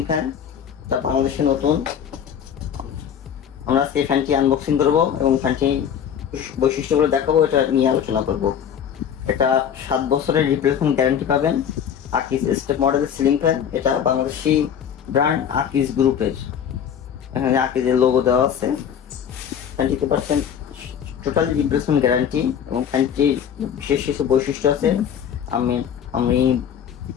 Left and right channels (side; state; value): right; quieter; 8.5 dB